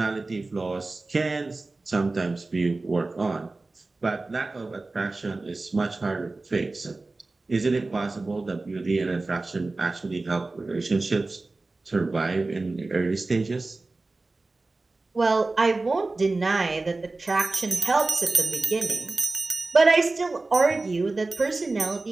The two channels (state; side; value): quieter; left; 3.3 dB